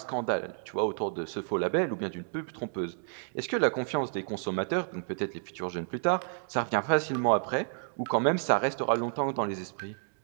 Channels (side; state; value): left; silent; digital silence